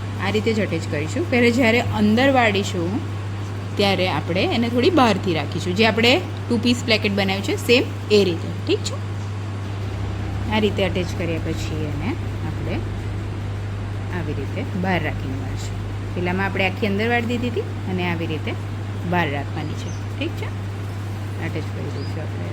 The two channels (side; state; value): both; identical; correlation 1.00